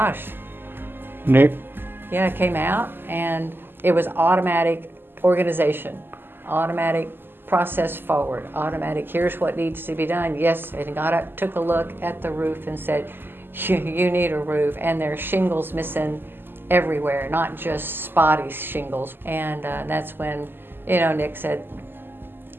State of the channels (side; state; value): left; late; 0.098 ms